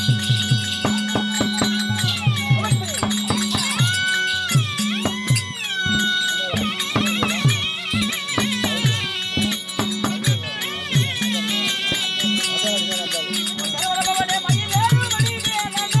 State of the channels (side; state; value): both; identical; correlation 1.00